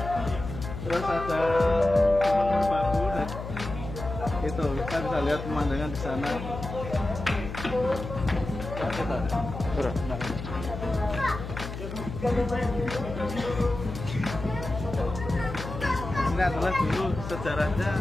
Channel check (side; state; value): left; noise; hum, 8 dB below the sound